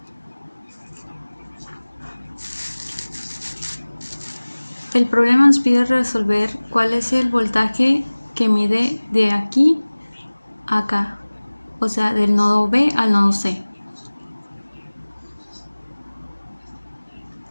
el problema nos pide resolver cuál es el voltaje que mide de aquí a acá, o sea, del nodo B al nodo C.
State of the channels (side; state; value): both; inverted; correlation -1.00